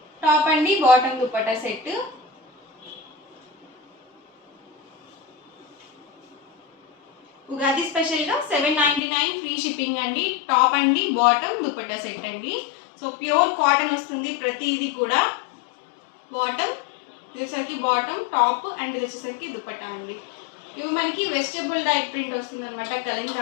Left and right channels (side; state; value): right; drops out; at 9.0 s